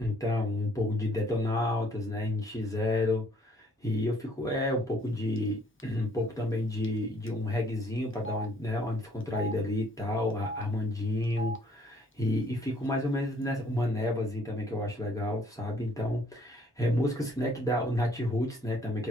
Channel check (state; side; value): normal; both; correlation 0.62